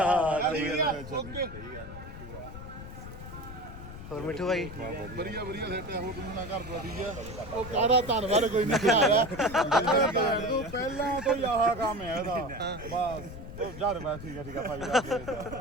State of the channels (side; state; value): left; noise; rumble, 12 dB below the sound